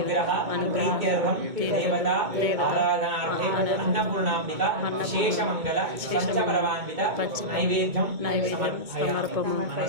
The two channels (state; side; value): late; left; 2.2 ms